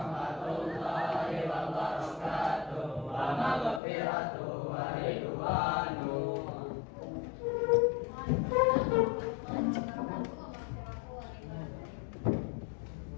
wabarakatuh. Wa maghfiratuh wa ridwanuh.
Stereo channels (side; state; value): right; drops out; at 3.8 s